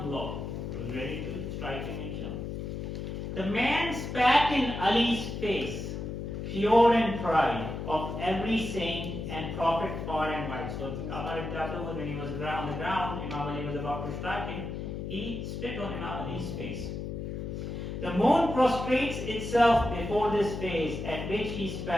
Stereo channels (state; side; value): noise; left; hum, 5 dB below the sound